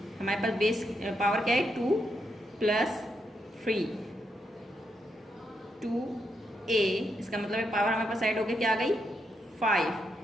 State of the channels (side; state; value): both; normal; correlation 0.81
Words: हमारे पास बेस पावर क्या है 2 प्लस 3, 2a इसका मतलब है पावर हमारे पास ऐड होके क्या आ गई